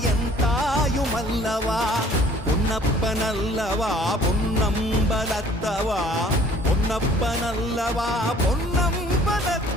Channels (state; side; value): normal; both; correlation 0.54